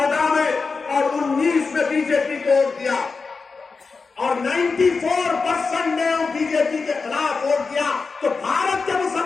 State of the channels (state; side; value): quieter; right; 4.5 dB